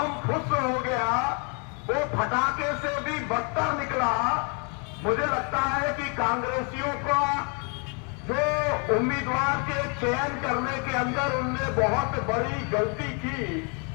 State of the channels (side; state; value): right; quieter; 37.2 dB